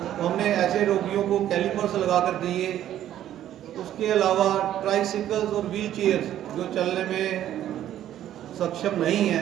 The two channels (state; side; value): quieter; left; 11.8 dB